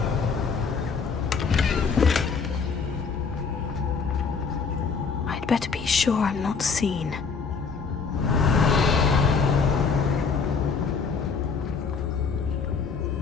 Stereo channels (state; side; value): quieter; right; 5.3 dB